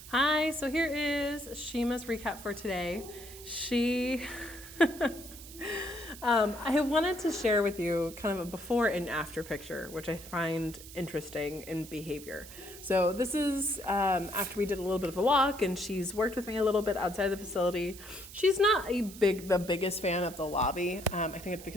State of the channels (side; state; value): right; noise; hiss, 16 dB below the sound